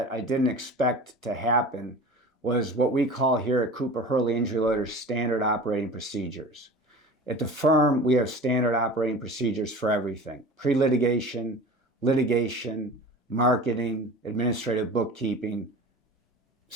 I didn't expect to happen was what we call here at Cooper Hurley Injury Lawyers standard operating procedures. At the firm, we have standard operating procedures for everything: pre-litigation, litigation, marketing, administrative bookkeeping,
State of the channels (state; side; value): normal; both; correlation 0.37